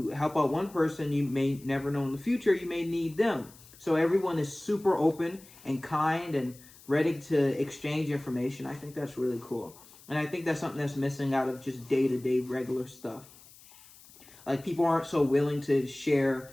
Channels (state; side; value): noise; left; hiss, 23 dB below the sound